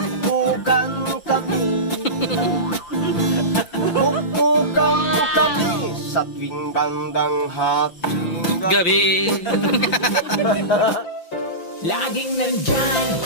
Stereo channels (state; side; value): late; right; 5.7 ms